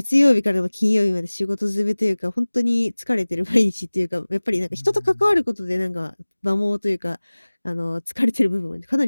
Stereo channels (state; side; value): inverted; both; correlation -1.00